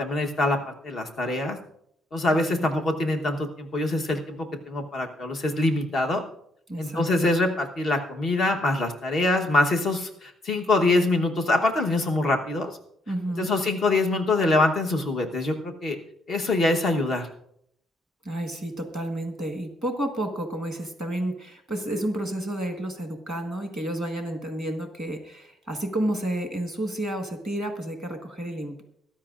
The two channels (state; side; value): normal; both; correlation 0.73